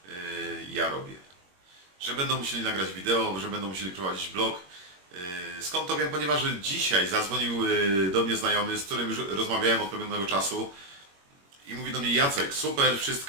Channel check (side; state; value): left; late; 21 ms